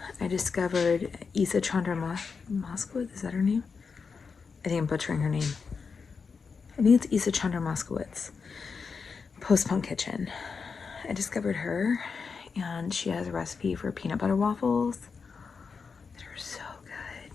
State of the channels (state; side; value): quieter; right; 5.3 dB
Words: I discovered Isa Chandra Moskowitz. Is that her name? I think I'm butchering her name. I think it's Isa Chandra Moskowitz. Post-Punk Kitchen. I discovered her, and she has a recipe for peanut butter waffles. They're so good.